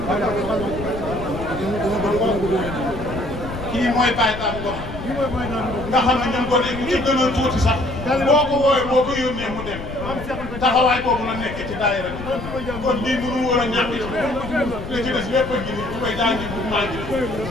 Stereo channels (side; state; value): left; noise; rumble, 9 dB below the sound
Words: kii mooy Baye Dame Ngom nga xam ne ñun ko ne ñu ci gënoon tuuti sax boo ko woowee boo ko yónnee mu dem taxawaay boobu la nekk ci daayira bi kon lii mënu woon a ñàkk ci li ci des lépp a ngi nii tubay daa ngi bu maa ngi